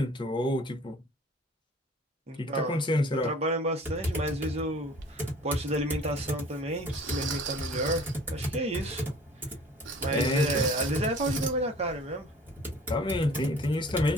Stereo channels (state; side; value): normal; both; correlation 0.48